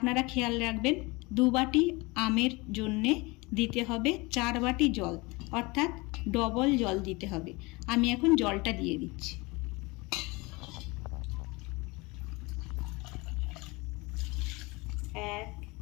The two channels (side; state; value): right; quieter; 24.8 dB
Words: খেয়াল রাখবেন, 2 বাটি আমের জন্যে দিতে হবে 4 বাটি জল, অর্থাৎ ডবল জল দিতে হবে। আমি এখন জলটা দিয়ে দিচ্ছি। 1